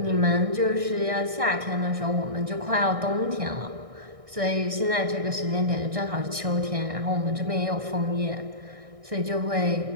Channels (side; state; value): left; late; 1.6 ms